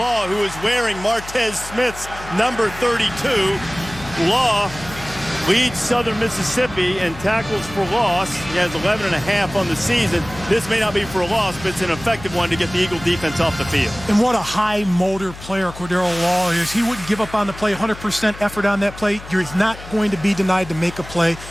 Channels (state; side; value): noise; left; hum, 15 dB below the sound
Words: who is wearing Martez Smith's number 32. Law leads Southern Mississippi in tackles for loss. He has 11.5 on the season. This may not be for a loss, but it's an effective one to get the Eagle defense off the field. And what a high motor player Cordero Law is. He wouldn't give up on the play, 100% effort on that play. You're not going to be denied to make a play.